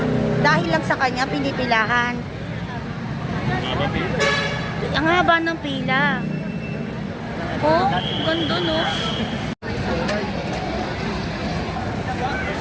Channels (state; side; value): identical; both; correlation 1.00